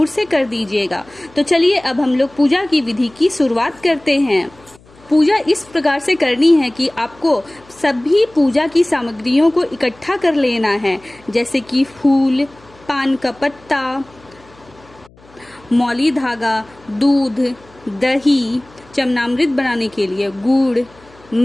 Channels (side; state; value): left; noise; hum, 27 dB below the sound